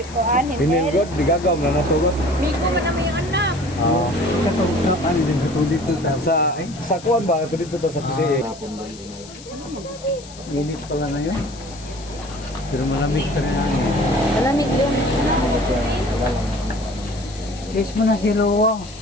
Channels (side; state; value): left; noise; hiss, 18 dB below the sound